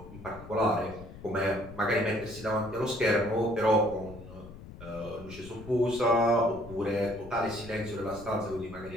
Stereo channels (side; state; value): left; noise; rumble, 15 dB below the sound